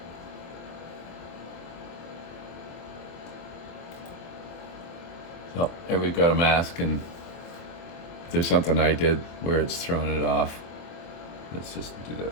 So there we've got a mask, and if there's something I did where it's throwing it off, let's just do this.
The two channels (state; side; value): late; right; 24 ms